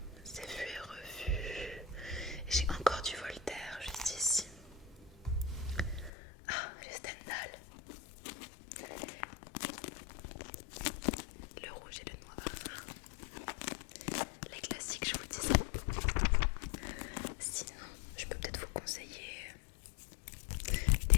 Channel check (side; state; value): right; drops out; at 6.1 s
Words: c'est vu et revu. J'ai encore du Voltaire juste ici. Ah, le Stendhal. Le rouge et le noir. Les classiques, je vous disais. Sinon, je peux peut-être vous conseiller des